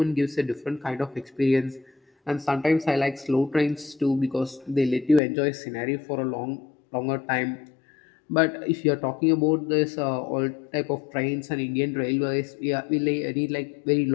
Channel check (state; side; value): drops out; right; at 5.2 s